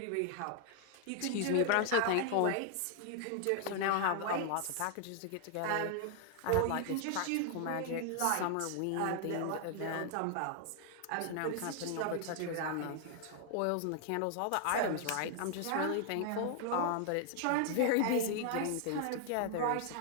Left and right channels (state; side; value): different; both; correlation 0.00